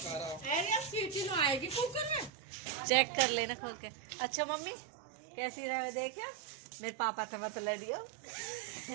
आएगी कुकर में। चेक कर लेना खोल के। अच्छा मम्मी कैसी रहे देखिए, मेरे पापा से मत लड़ियो।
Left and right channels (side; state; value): left; drops out; at 2.3 s